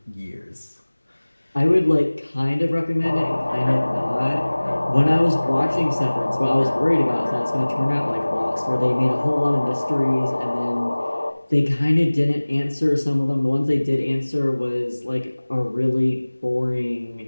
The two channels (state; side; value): inverted; both; correlation -1.00